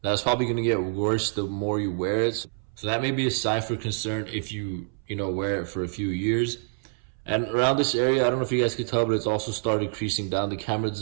That's probably going to get worse the more you wear it. So that may be a sign for concern if you wear it for a few years. And around this area, I don't know if you guys can tell, but it's also started creasing down. The camera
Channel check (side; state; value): left; silent; 61 dB below the other